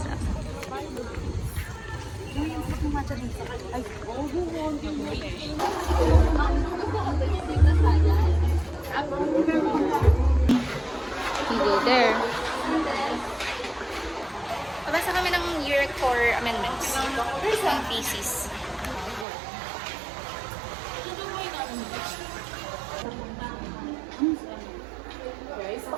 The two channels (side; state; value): left; drops out; at 19.2 s